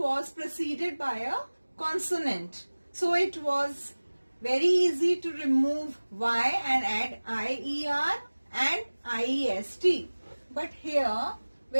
preceded by a consonant. So it was very easy to remove y and add IER and IEST. But here,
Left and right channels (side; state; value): both; inverted; correlation -1.00